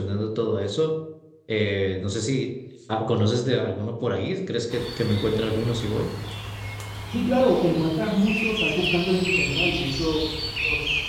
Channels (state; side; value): identical; both; correlation 1.00